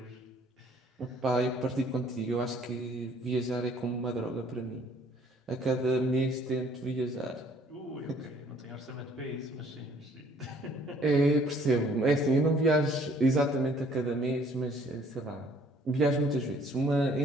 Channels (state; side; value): normal; both; correlation 0.59